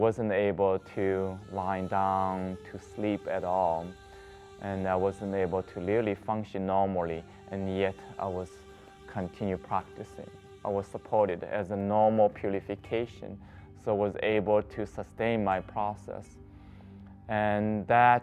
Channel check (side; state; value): both; identical; correlation 1.00